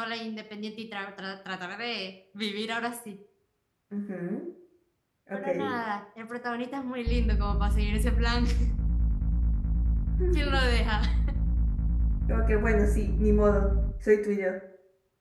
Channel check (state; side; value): identical; both; correlation 1.00